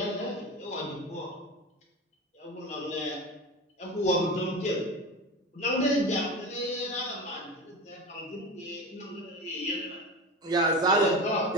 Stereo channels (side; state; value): both; normal; correlation 0.27